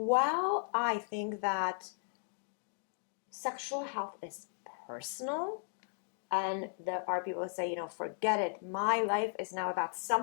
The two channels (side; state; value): right; silent; digital silence